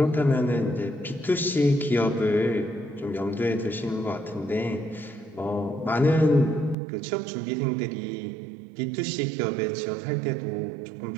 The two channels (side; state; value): left; drops out; at 6.8 s